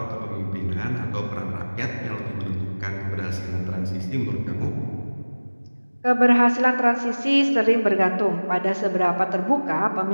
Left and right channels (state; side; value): inverted; both; correlation -1.00